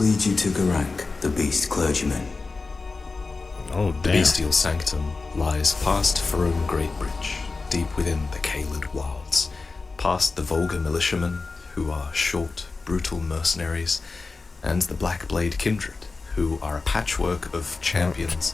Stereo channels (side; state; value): right; quieter; 4.0 dB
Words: you to Garak, the beast clergyman. Oh, The damn. bestial sanctum lies past Farum Greatbridge, deep within the Caelid wilds, past the vulgar militiamen, who are short, brutal mercenaries, and the Blackblade kindred, who are a patchwork of